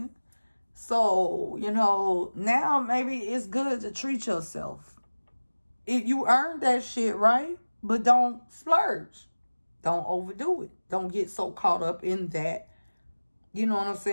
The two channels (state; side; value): inverted; both; correlation -1.00